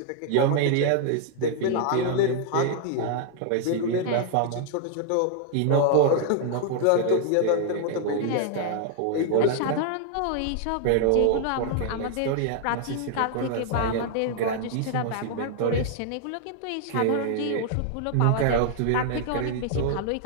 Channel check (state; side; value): different; both; correlation 0.00